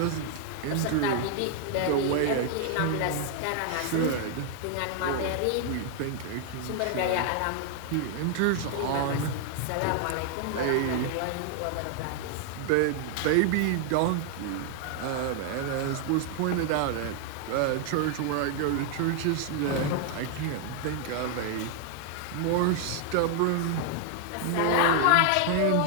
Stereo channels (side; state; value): both; different; correlation 0.00